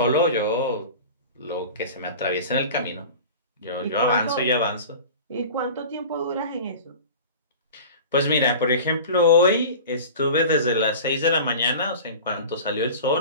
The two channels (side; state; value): both; inverted; correlation -0.36